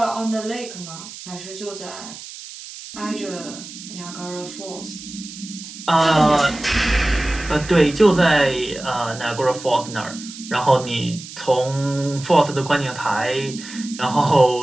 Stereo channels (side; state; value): right; noise; hiss, 14 dB below the sound